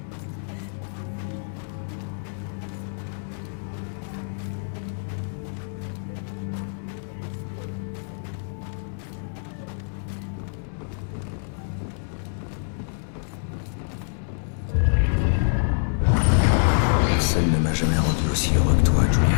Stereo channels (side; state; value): right; silent; digital silence